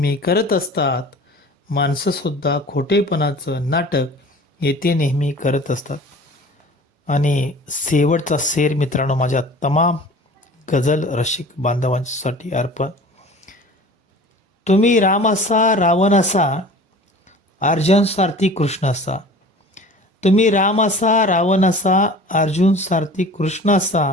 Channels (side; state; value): both; normal; correlation 0.42